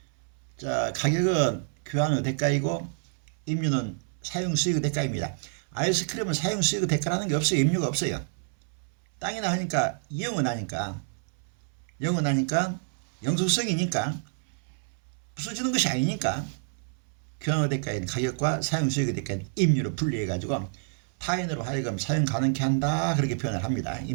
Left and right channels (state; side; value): silent; left; 59 dB below the other